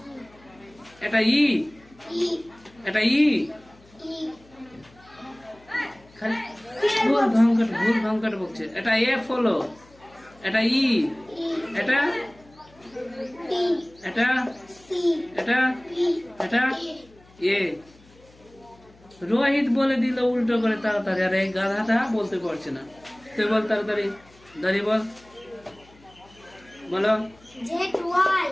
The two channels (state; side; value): noise; left; hum, 27 dB below the sound